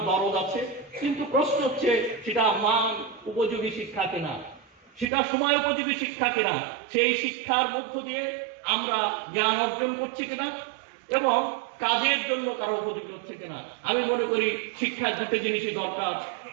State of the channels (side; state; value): left; drops out; at 5.1 s